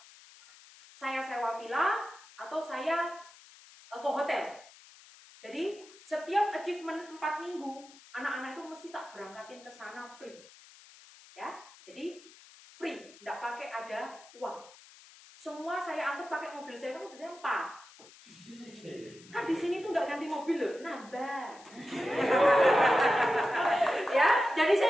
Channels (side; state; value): left; noise; hiss, 22 dB below the sound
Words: Saya sewa villa atau saya ke hotel. Jadi setiap achievement 4 minggu, anak-anak itu mesti tak berangkatin ke sana free. Ya, jadi free, tidak pakai ada uang. Semua saya angkat pakai mobil saya, kan mobil saya 4. Kan di sini tuh nggak ganti mobil loh, nambah. Ya, jadi